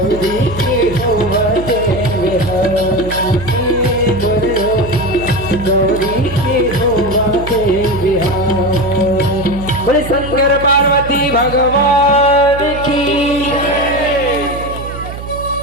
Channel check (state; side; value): noise; right; hum, 10 dB below the sound